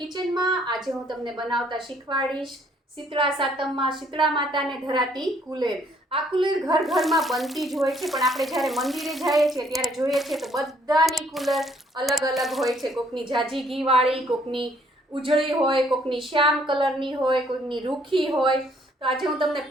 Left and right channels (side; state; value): both; normal; correlation 0.65